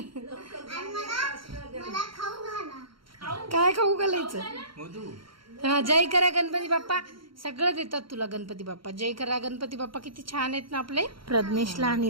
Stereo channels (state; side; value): late; left; 0.73 ms